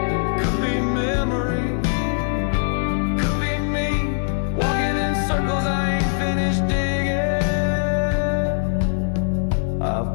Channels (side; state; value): right; silent; digital silence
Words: could be memory, could be me walking in circles I ain't finished digging.